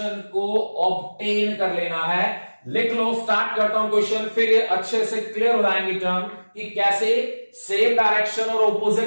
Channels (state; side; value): inverted; both; correlation -1.00